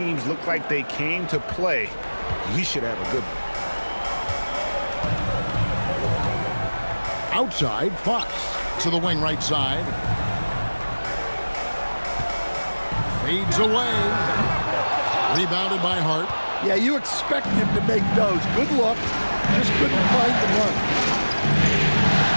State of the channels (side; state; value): both; inverted; correlation -1.00